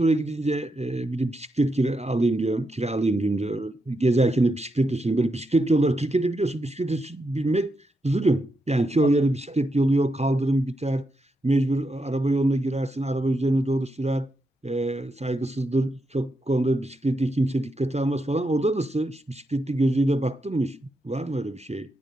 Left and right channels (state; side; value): normal; both; correlation 0.83